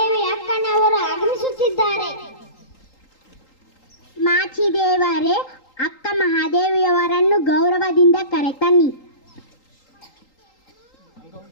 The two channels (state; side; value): late; right; 3.8 ms